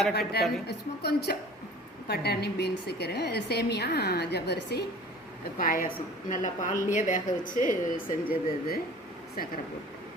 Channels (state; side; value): normal; both; correlation 0.45